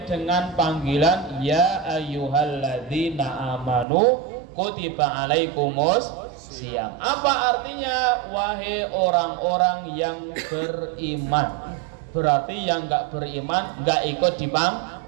dengan panggilan ya ayyuhalladzina amanu kutiba alaikumus siyam. Apa artinya? Wahai orang-orang yang beriman. Berarti yang enggak beriman enggak ikut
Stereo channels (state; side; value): drops out; left; at 3.9 s